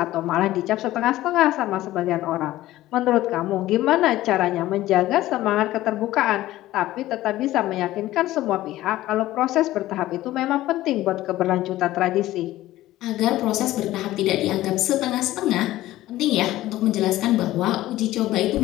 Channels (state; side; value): quieter; right; 15.6 dB